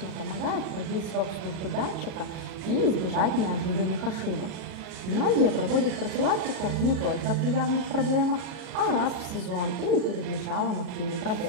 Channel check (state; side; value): late; left; 37 ms